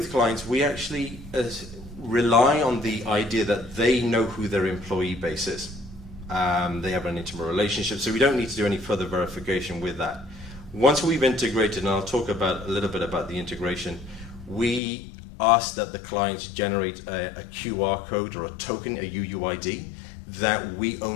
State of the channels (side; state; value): right; drops out; at 14.8 s